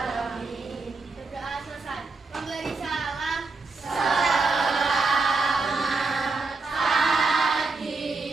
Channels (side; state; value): left; quieter; 3.9 dB